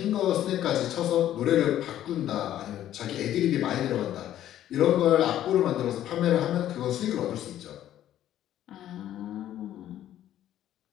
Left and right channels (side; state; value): right; quieter; 12.1 dB